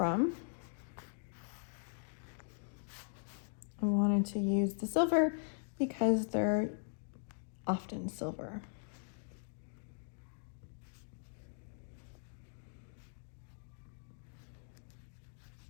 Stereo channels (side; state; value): right; silent; digital silence